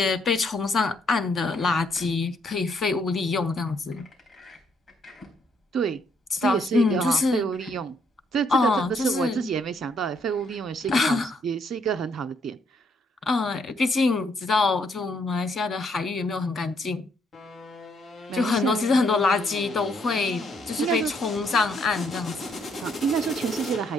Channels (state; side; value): normal; both; correlation 0.71